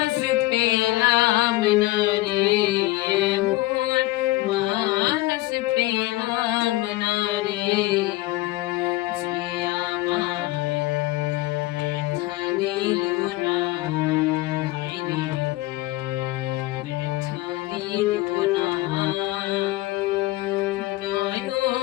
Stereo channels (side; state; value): right; quieter; 18.5 dB